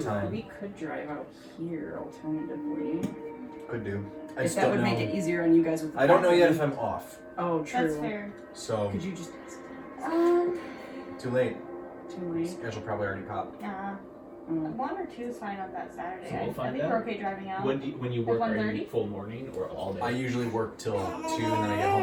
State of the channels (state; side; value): identical; both; correlation 1.00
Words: drive out here alternatively. Could do. I If just that don't would know. make it easier on you guys with the I don't know yet packing. if I'm off. Oh, true. That's fair. So Could you just too late. too late? Schedule probably already popped. Mm. 1 or 2 is fine on that Saturday. So we'll I find think out. we're okay driving out. When you work, are you 1:30? full morning or all day? I usually work till 2 and then I get home